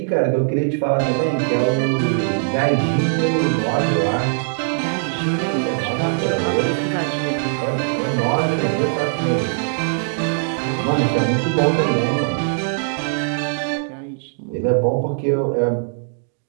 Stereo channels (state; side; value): silent; left; digital silence